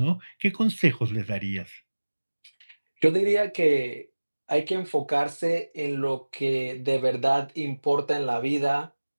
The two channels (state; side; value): inverted; both; correlation -1.00